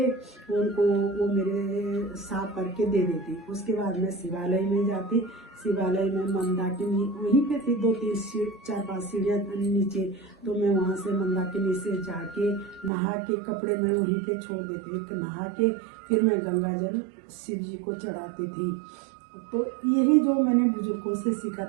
उनको वो मेरे साफ करके दे देती। उसके बाद मैं शिवालय में जाती। शिवालय में मंदाकिनी वहीं पे थी, 4-5 सीढ़ियाँ नीचे। तो मैं वहाँ से मंदाकिनी से जाके नहा के कपड़े मैं वहीं पे छोड़ देती, नहा के फिर मैं गंगा जल शिव जी को चढ़ाती थी। तो यही जो मैंने बुजुर्गों से सीखा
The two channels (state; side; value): drops out; left; at 12.9 s